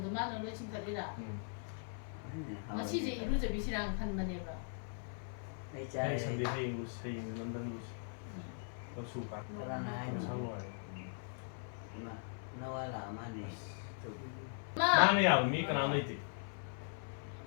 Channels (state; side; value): silent; right; 51 dB below the other